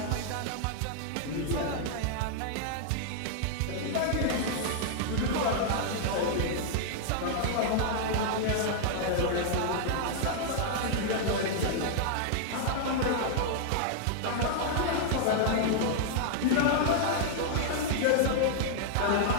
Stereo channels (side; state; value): both; different; correlation -0.01